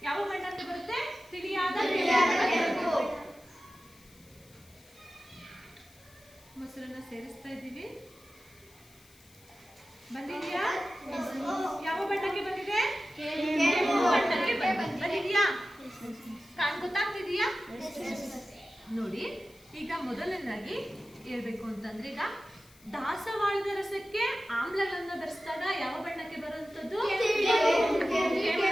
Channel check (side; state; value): left; noise; hiss, 26 dB below the sound